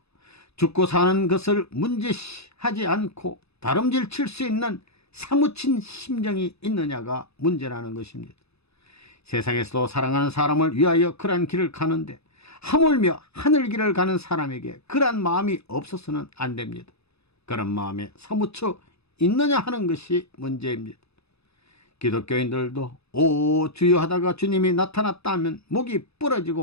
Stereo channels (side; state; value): right; late; 0.79 ms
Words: 죽고 사는 것을 문제시하지 않고 다름질 칠 수 있는 사무친 심정이 있느냐가 문제라는 것입니다. 세상에서도 사랑하는 사람을 위하여 그러한 길을 가는데 하물며 하늘길을 가는 사람에게 그러한 마음이 없어서는 안 됩니다. 그런 마음에 사무쳐 있느냐 하는 것이 문제입니다. 기독교인들도 오 주여 하다가 주님이 나타났다 하면 목이